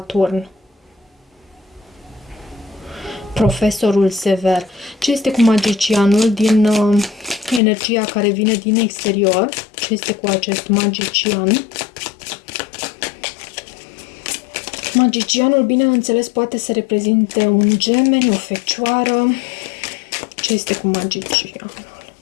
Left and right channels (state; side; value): drops out; right; at 7.6 s